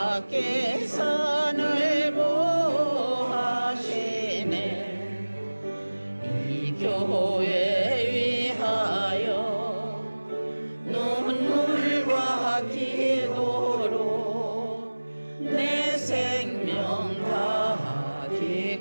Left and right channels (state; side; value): inverted; both; correlation -1.00